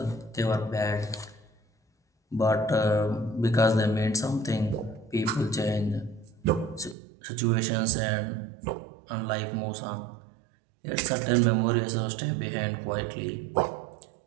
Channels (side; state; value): left; drops out; at 7.0 s